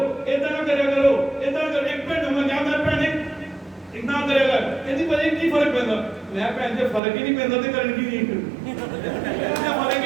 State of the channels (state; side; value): drops out; left; at 7.0 s